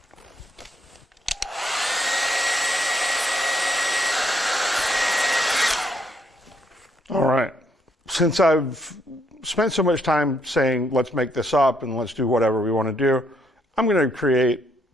All right. Since I've spent so much time saying, let's make this up and let's do whatever we want to do, I'm going to create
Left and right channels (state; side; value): normal; both; correlation 0.70